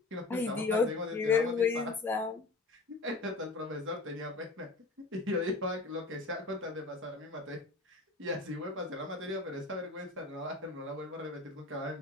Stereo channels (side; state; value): right; quieter; 3.5 dB